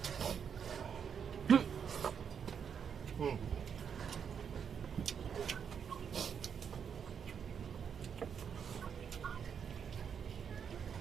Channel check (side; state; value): left; quieter; 7.3 dB